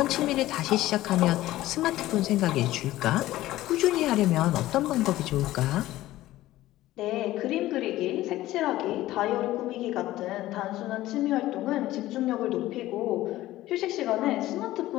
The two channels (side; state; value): right; quieter; 15.7 dB